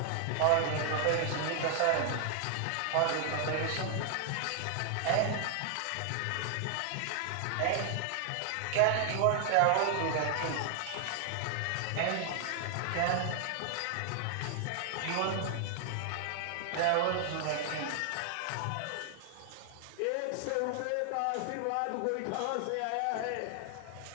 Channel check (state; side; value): different; both; correlation 0.00